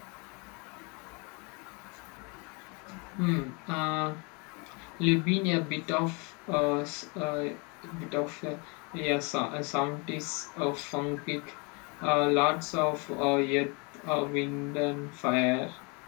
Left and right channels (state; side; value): quieter; right; 31.4 dB